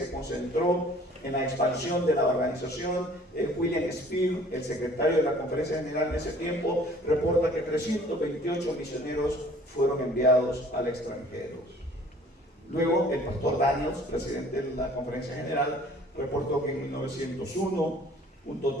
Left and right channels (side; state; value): both; normal; correlation 0.52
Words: concentró en la expansión de la organización. William Spear, el secretario de la Conferencia General en ese tiempo, reporta que 328 misioneros fueron enviados al extranjero. Luego, el pastor Daniels, presidente de la Conferencia General, reportó que en 1901 un